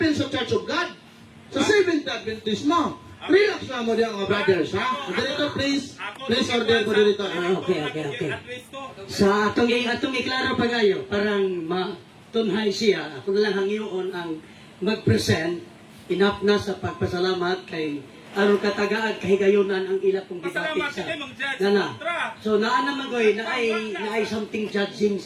sa Church of God. Sa Seventh Adventist mo. Relax lang mo diyan mga brothers ha. Moderator, please. Please order, moderator. Okay. Sa atong iklaro pa kayo, parang matunhay siya. Ako na lang hangiyon ang mag-present. Enough na sa pagpasalamat kay aron katagaan kahigayonan ang ila pong debate Pasalamat sa kay Mang Judge. Nana. Tra. So naa naman koy na ay something judging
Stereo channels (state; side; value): identical; both; correlation 1.00